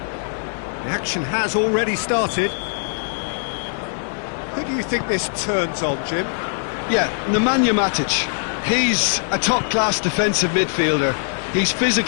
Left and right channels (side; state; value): right; silent; digital silence